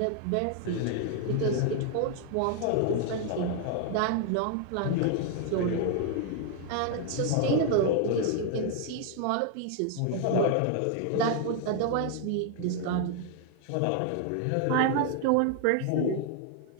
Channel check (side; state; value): both; different; correlation 0.00